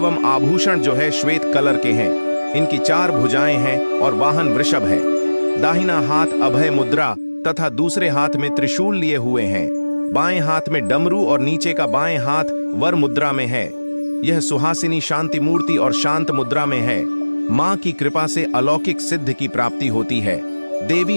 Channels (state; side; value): inverted; both; correlation -1.00